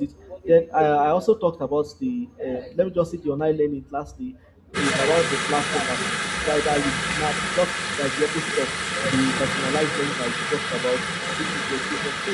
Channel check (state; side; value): identical; both; correlation 1.00